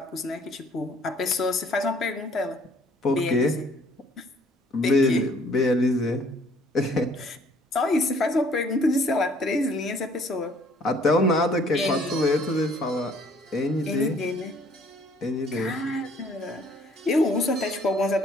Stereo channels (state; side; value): normal; both; correlation 0.60